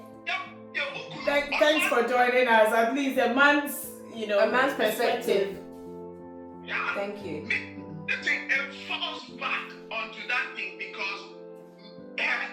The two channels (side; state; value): both; identical; correlation 1.00